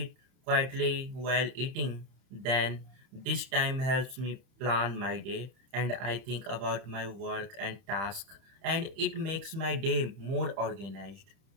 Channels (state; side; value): late; left; 30 ms